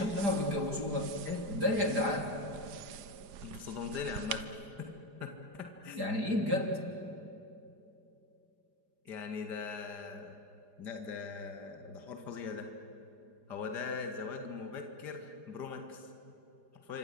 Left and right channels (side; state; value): left; late; 4.9 ms